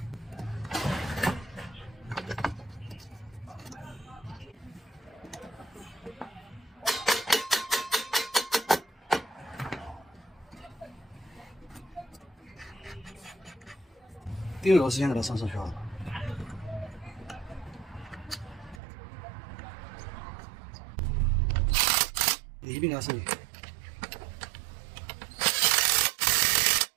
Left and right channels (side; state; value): left; drops out; at 18.8 s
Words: 定位螺丝先给它上上去啊。一并给它上去。